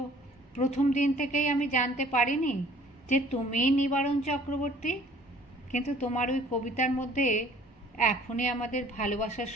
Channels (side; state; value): both; normal; correlation 0.53